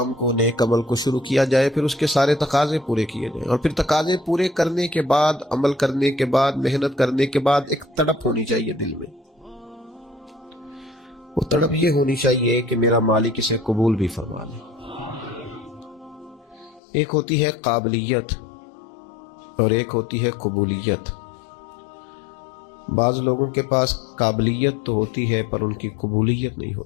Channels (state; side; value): drops out; right; at 16.8 s